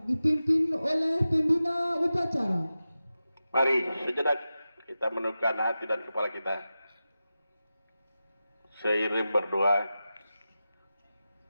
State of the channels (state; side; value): inverted; both; correlation -0.93